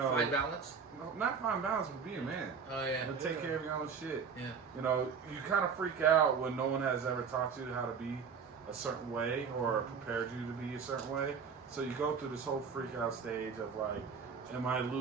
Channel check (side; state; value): left; quieter; 6.1 dB